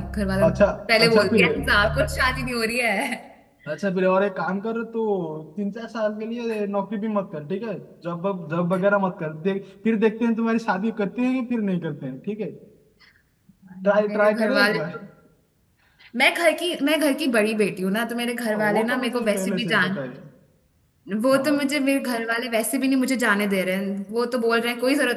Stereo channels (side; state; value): both; identical; correlation 1.00